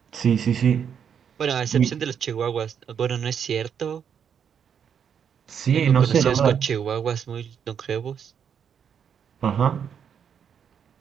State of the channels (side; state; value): left; quieter; 7.8 dB